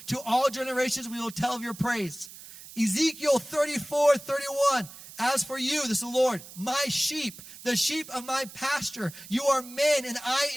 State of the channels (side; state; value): right; noise; hiss, 16 dB below the sound